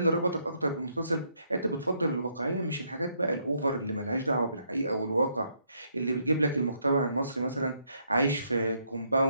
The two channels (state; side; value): inverted; both; correlation -0.73